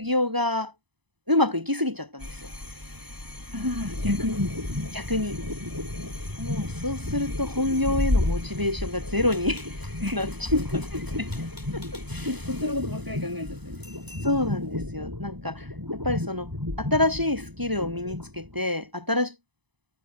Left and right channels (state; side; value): late; left; 0.99 ms